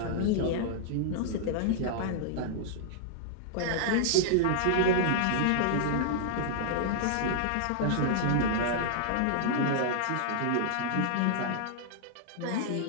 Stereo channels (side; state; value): both; different; correlation -0.01